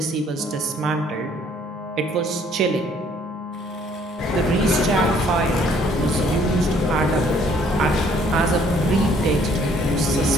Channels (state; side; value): normal; both; correlation 0.62